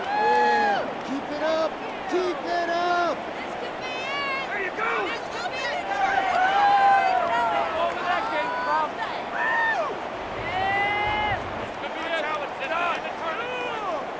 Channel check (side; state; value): both; identical; correlation 1.00